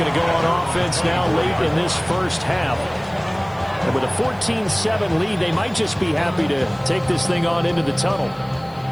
to go on offense now late in this first half. And with a 14-7 lead, they might just be happy to take this thing on into the tunnel.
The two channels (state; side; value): noise; left; hiss, 29 dB below the sound